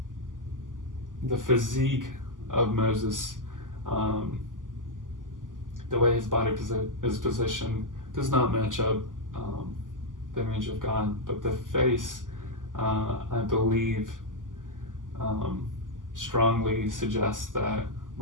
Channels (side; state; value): left; late; 0.88 ms